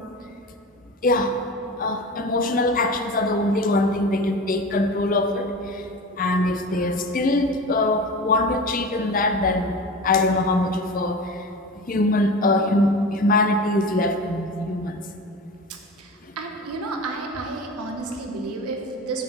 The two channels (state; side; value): normal; both; correlation 0.31